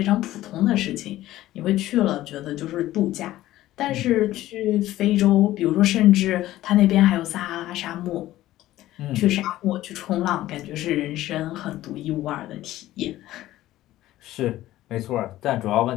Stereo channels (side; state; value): right; quieter; 15.1 dB